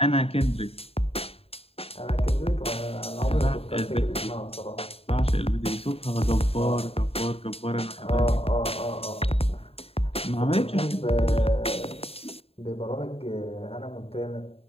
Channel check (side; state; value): right; late; 0.28 ms